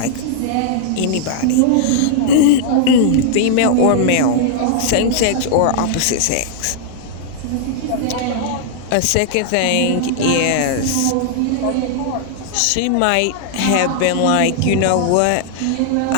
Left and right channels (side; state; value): both; different; correlation -0.01